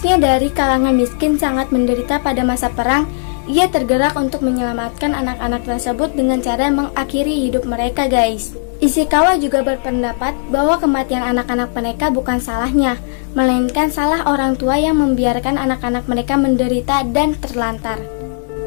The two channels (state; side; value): silent; right; digital silence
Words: dari kalangan miskin, sangat menderita pada masa perang, ia tergerak untuk menyelamatkan anak-anak tersebut dengan cara mengakhiri hidup mereka guys. Ishikawa juga berpendapat bahwa kematian anak-anak mereka bukan salahnya, melainkan salah orang tua yang membiarkan anak-anak mereka menderita dan terlantar.